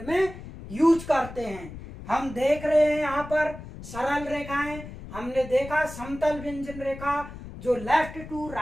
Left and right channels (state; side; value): noise; left; rumble, 13 dB below the sound